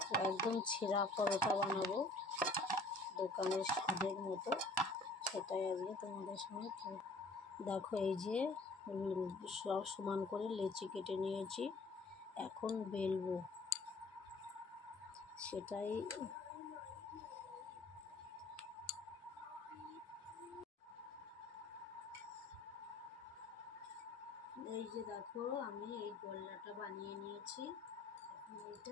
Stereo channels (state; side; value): quieter; right; 3.1 dB